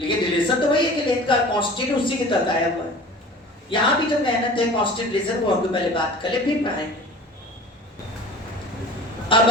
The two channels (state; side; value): normal; both; correlation 0.41